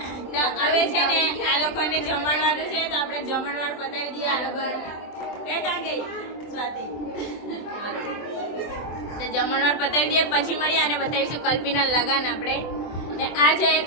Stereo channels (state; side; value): late; right; 24 ms